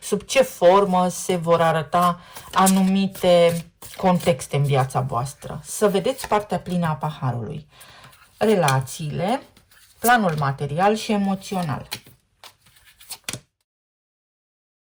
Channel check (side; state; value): both; identical; correlation 1.00